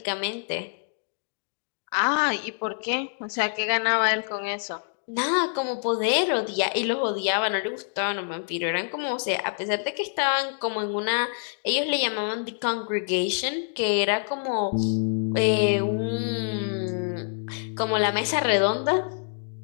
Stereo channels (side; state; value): right; silent; digital silence